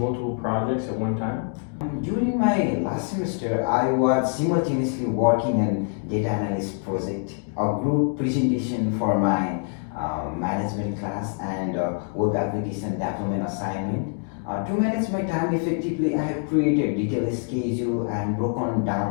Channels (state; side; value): silent; right; 56 dB below the other